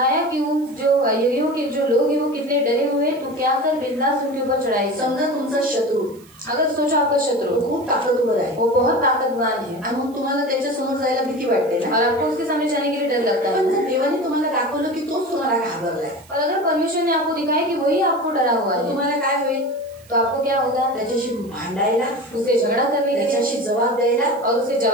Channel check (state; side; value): noise; right; hiss, 26 dB below the sound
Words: कि उन जो यरीहो के जो लोग हैं वो कितने डरे हुए, तो क्या कर बिंदास उनके ऊपर चढ़ाई. समजा तुमचा शत्रू, अगर सोचो आपका शत्रु खूप ताकदवर आहे, वो बहुत ताकतवान है, आणि मग तुम्हाला त्याच्या समोर जायला भीती वाटते ना, और आपको उसके सामने जाने के लिए डर लगता है. पण जर देवाने तुम्हाला दाखवलं की तोच तुम्हाला घाबरलाय, और अगर परमेश्वर ने आपको दिखाया कि वही आपको डरा हुआ है, तुम्हाला काय होईल, तो आपको क्या होगा, त्याच्याशी भांडायला, उसे झगड़ा करने के लिए, त्याच्याशी जबाब द्यायला और उसे